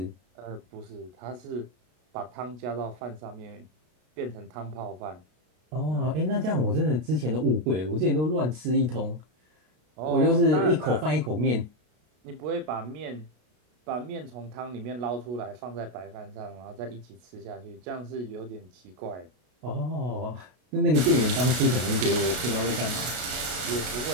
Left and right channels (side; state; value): left; late; 33 ms